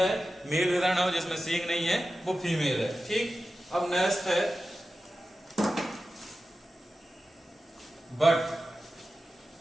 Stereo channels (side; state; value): both; normal; correlation 0.93